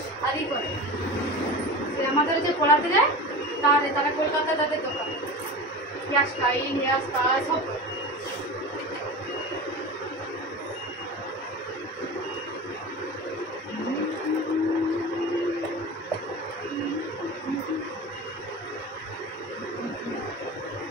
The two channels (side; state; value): both; normal; correlation 0.30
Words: আর ই করে। যে আমাদের যে পড়াতে যায় তারা কলকাতায় তাদের দোকান, হেয়ার স্টাইল, হেয়ার স্টাইল সব করে।